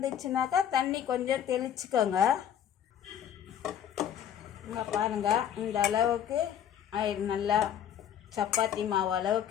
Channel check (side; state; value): right; quieter; 9.6 dB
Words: தண்ணி கொஞ்சம் தெளிச்சுக்கோங்க. இங்கே பாருங்கள், இந்த அளவுக்கு நல்லா சப்பாத்தி மாவு